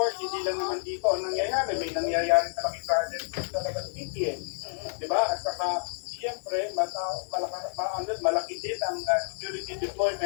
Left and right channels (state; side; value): silent; right; digital silence